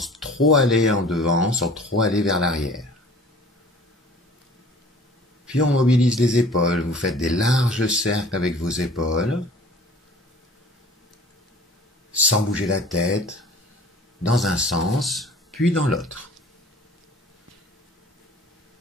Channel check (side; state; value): both; normal; correlation 0.47